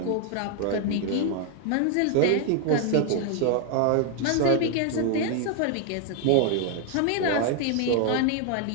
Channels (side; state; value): both; different; correlation 0.00